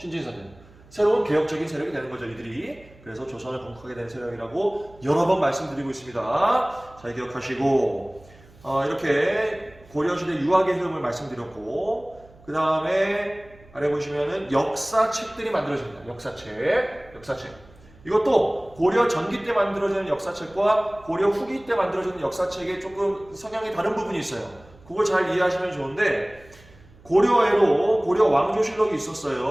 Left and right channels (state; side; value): noise; right; hum, 25 dB below the sound